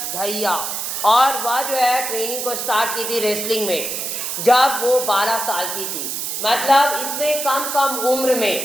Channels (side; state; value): right; noise; hiss, 3 dB below the sound